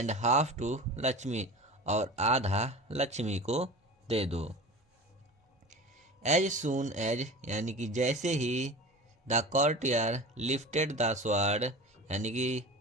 हाफ टू लक्ष्मी और आधा लक्ष्मी को दे दो। एज सून एज यानी कि जैसे ही, the courtier lifted the sword यानी कि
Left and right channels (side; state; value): both; normal; correlation 0.34